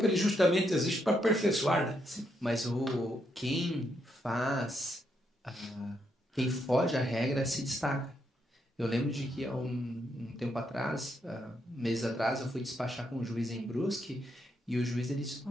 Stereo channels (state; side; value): normal; both; correlation 0.78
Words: ele justamente existe para aperfeiçoar, né? Mas quem foge à regra se destaca. Eu lembro de que há um tempo atrás, meses atrás, eu fui despachar com um juiz em Brusque e o juiz ele disse,